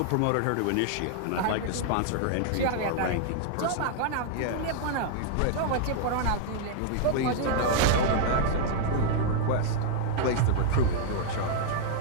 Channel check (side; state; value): both; different; correlation 0.00